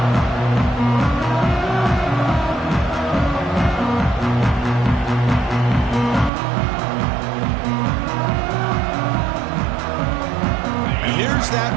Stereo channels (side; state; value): left; drops out; at 6.3 s